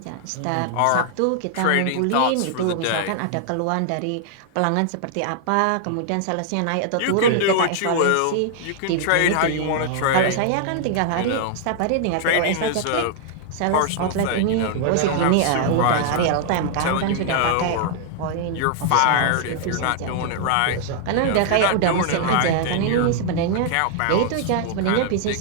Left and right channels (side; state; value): both; different; correlation 0.00